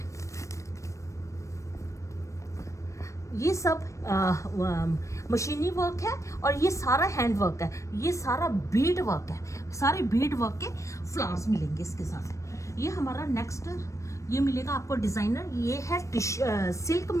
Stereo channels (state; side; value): late; right; 0.15 ms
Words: ये सब मशीनी वर्क है और ये सारा हैंड वर्क है। ये सारा बीड वर्क है, सारे बीड वर्क के फ्लावर्स मिलेंगे इसके साथ। ये हमारा नेक्स्ट ये मिलेगा आपको डिज़ाइनर। ये है सिल्क